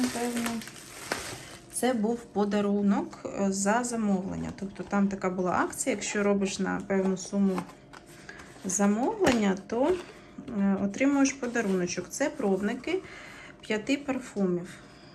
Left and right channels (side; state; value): both; identical; correlation 1.00